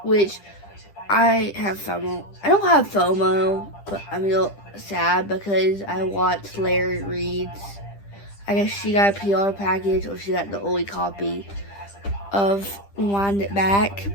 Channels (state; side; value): late; right; 10 ms